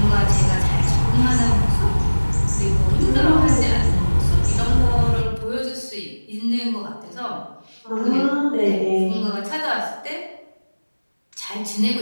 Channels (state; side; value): inverted; both; correlation -1.00